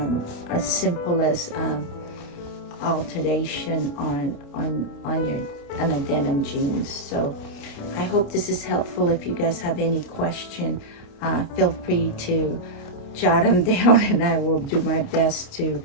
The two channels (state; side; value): late; right; 29 ms